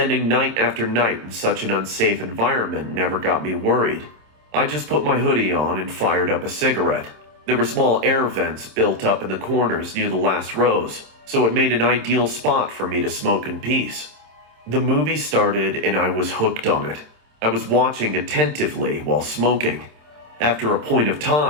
night after night in such an unsafe environment never got me worried. I just put my hoodie on and fired up a cigarette. There were small air vents built up in the corners near the last rows, so it made an ideal spot for me to smoke in peace. The movie started and I was hooked on it. I was watching attentively while smoking. After a point of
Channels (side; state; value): left; late; 27 ms